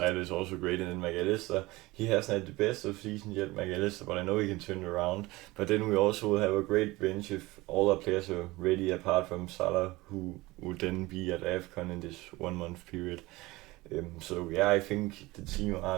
is also great. And then McAllister, he hasn't had the best of season yet, McAllister, but I know he can turn it around. But then we also will have a great bench if all our players are ready, apart from Salah, who would then be at AFCON in this 1 month period. So yeah, I think the team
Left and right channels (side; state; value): left; quieter; 20.7 dB